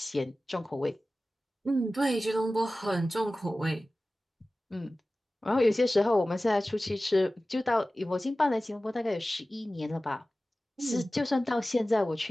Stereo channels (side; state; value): both; normal; correlation 0.96